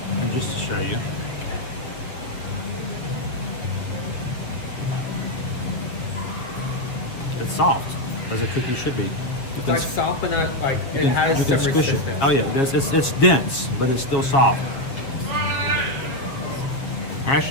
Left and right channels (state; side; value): late; right; 7.2 ms